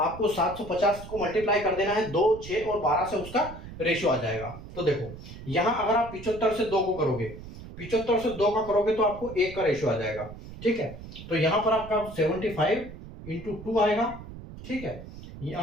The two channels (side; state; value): right; noise; rumble, 14 dB below the sound